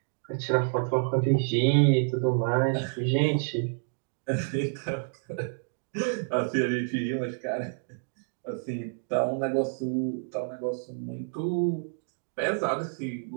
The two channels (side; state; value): left; silent; digital silence